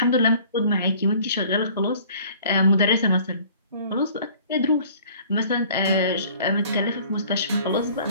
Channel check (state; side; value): inverted; both; correlation -0.52